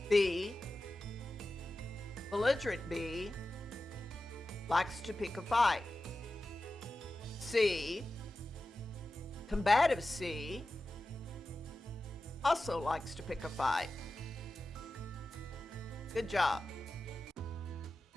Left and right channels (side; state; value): both; normal; correlation 0.94